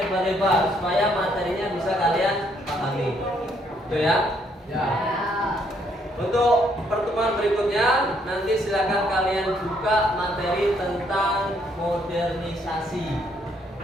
supaya materinya bisa kalian pahami. Itu ya? Ya. Untuk pertemuan berikutnya nanti silakan kalian buka materi tentang modernisasi.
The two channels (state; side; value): normal; both; correlation 0.70